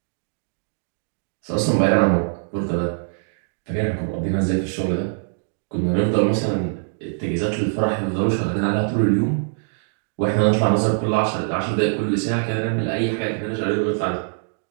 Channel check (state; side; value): silent; left; digital silence